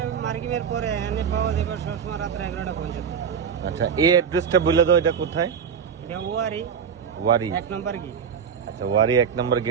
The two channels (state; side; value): quieter; left; 7.2 dB